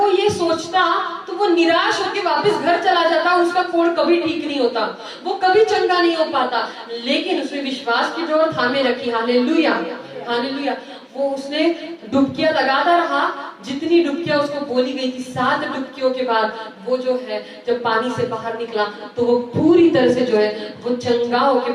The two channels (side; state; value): both; identical; correlation 1.00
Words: ये सोचता तो वो निराश होकर वापस घर चला जाता, उसका कोढ़ कभी ठीक नहीं होता, वो कभी चंगा नहीं हो पाता। लेकिन उसने विश्वास की डोर थामे रखी। हालेलुया। हालेलुया। वो उसने डुबकियां लगाता रहा, जितनी डुबकियां उसको बोली गई थी। 7 डुबकियों के बाद वो जो है जब पानी से बाहर निकला तो वो पूरी तरह से जो है वो चंगा होके